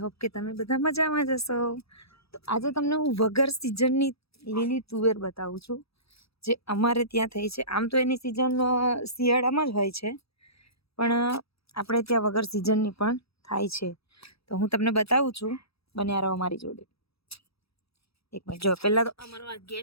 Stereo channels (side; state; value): right; late; 0.77 ms